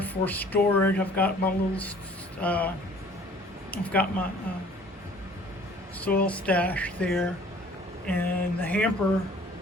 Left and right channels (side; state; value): both; normal; correlation 0.53